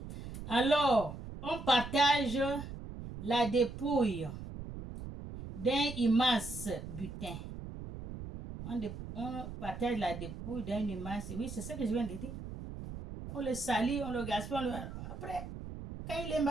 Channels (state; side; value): noise; right; rumble, 10 dB below the sound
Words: Alors, on partage la dépouille d'un immense butin. On partage la dépouille d'un immense. Oui, c'est ce que je viens de dire. On le salit, on le gaspille. Après, quand il est